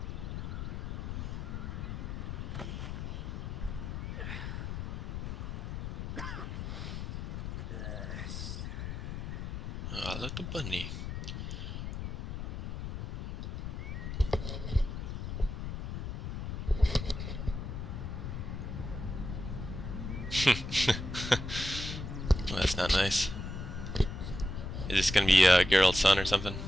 Ah, little bunny. Well, that's not nice. Is this gonna be Geralt's son or something?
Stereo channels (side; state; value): left; noise; rumble, 5 dB below the sound